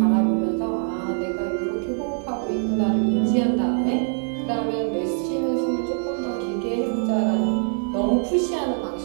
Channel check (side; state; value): left; silent; digital silence